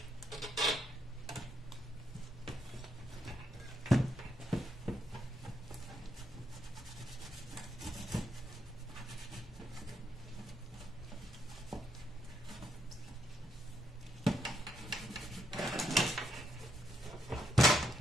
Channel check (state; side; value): normal; both; correlation 0.77